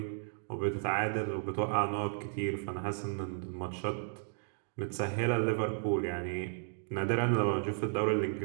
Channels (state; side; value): silent; left; digital silence